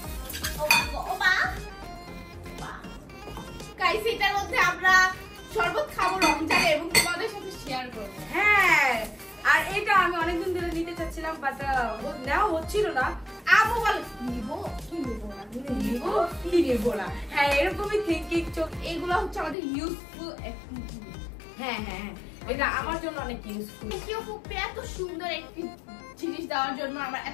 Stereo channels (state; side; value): drops out; right; at 19.6 s